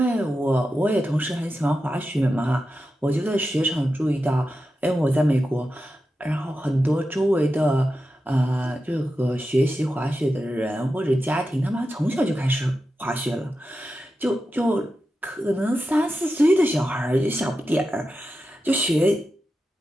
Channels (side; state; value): both; normal; correlation 0.91